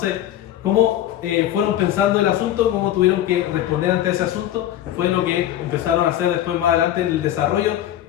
cómo fueron pensando el asunto, cómo tuvieron que responder ante ese asunto, fue lo que empezaron a hacer después más adelante en el desarrollo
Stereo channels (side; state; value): right; quieter; 12.3 dB